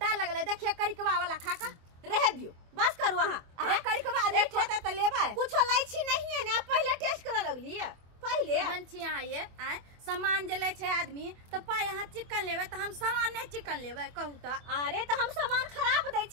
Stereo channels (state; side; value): late; left; 24 ms